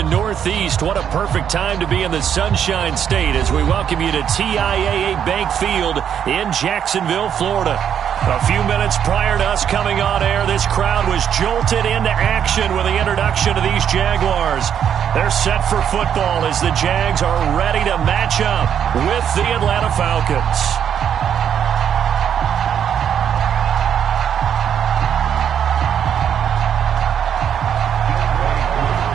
Northeast, what a perfect time to be in the Sunshine State as we welcome you to TIAA Bank Field in Jacksonville, Florida. A few minutes prior to us coming on air, this crowd was jolted into action with the introduction of these Jaguars. They're set for football as the Jags are ready to match up with the Atlanta Falcons.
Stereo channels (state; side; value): quieter; left; 8.7 dB